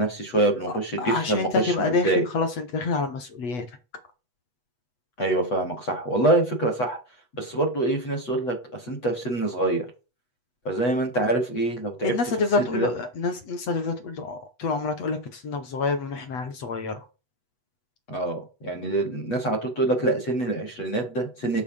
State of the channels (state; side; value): late; right; 8.2 ms